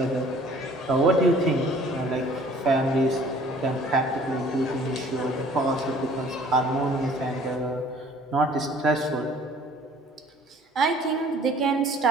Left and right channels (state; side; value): normal; both; correlation 0.53